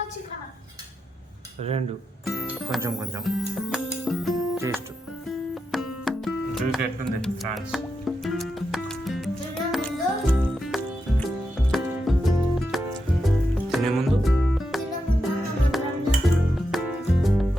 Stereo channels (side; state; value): both; normal; correlation 0.86